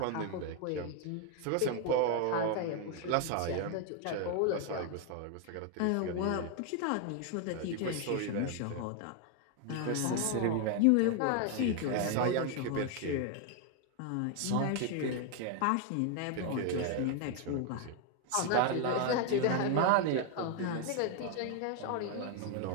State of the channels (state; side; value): different; both; correlation 0.01